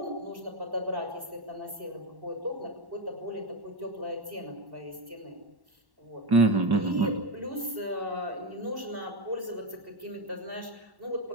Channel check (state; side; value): late; left; 1.1 ms